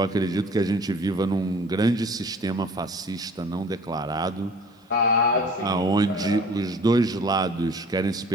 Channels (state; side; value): normal; both; correlation 0.49